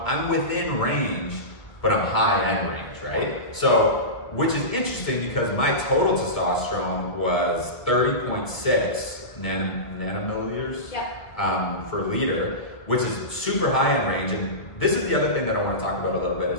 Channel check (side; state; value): right; late; 1.5 ms